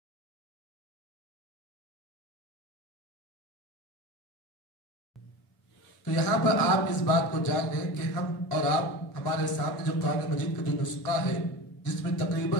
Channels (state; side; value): normal; both; correlation 0.31